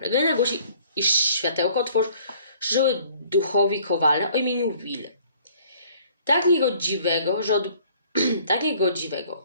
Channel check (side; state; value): both; inverted; correlation -0.56